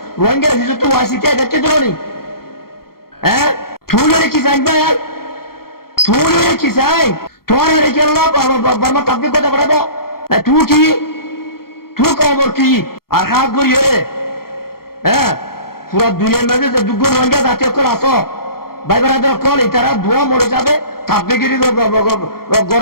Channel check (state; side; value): late; right; 0.94 ms